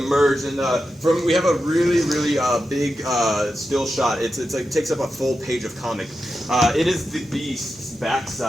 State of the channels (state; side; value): normal; both; correlation 0.90